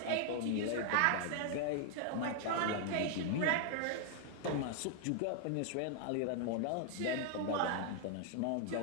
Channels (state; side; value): different; both; correlation 0.00